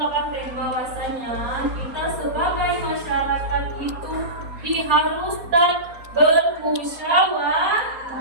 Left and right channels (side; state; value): left; late; 4.3 ms